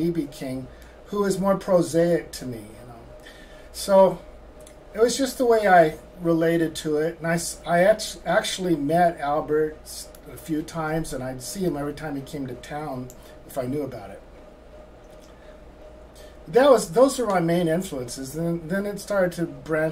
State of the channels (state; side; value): identical; both; correlation 1.00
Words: King, who is more prosaic to me. So it was just the way I related to it, and I actually met Albert a few times, and I'd see him every time he came to town if I knew about it. Those were my main influences. Then it started to